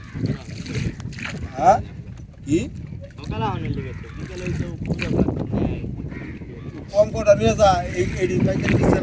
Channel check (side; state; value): both; identical; correlation 1.00